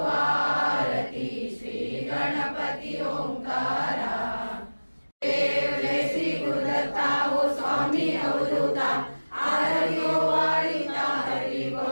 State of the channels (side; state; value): both; inverted; correlation -1.00